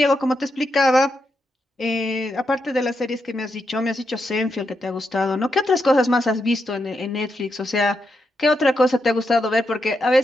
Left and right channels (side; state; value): both; normal; correlation 0.84